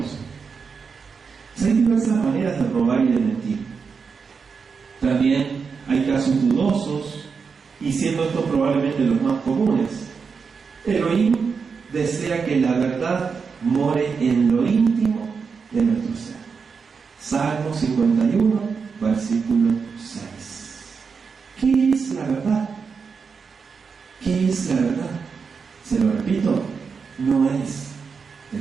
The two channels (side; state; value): left; quieter; 5.5 dB